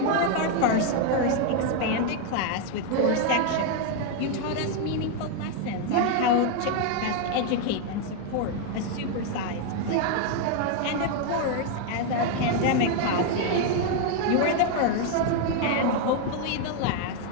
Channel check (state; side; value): different; both; correlation 0.01